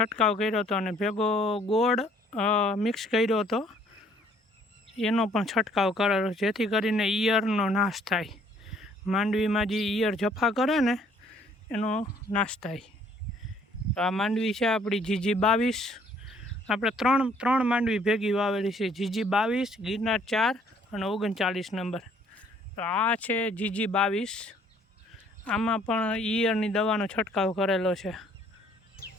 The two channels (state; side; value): normal; both; correlation 0.61